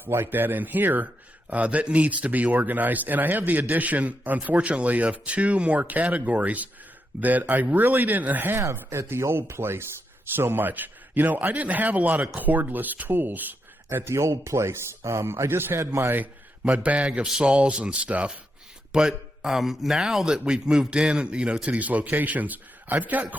like that in here that needs to be organized. And I have the addition, unfortunately, of 2 more categories that I really didn't have at the old place so much. I didn't have a lot of cordless tools at the old place. I just had my bag of saws and stuff. But now that we've moved in, to these locations, I've got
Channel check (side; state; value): both; normal; correlation 0.83